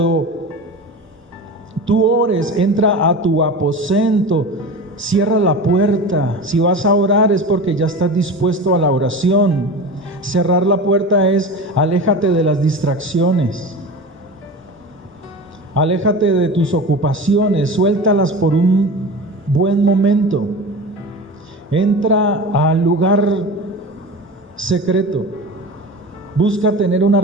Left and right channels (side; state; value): both; normal; correlation 0.31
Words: tú ores, entra a tu aposento, cierra la puerta. Si vas a orar es porque ya estás dispuesto a la oración. Cerrar la puerta es, aléjate de las distracciones. Aléjate de tus ocupaciones, suéltalas por un buen momento. Entra al lugar secreto. Busca tener una